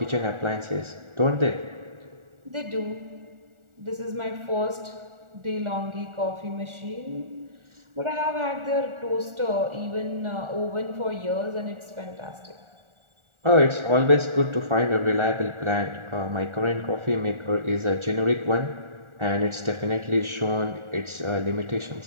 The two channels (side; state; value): left; late; 1.4 ms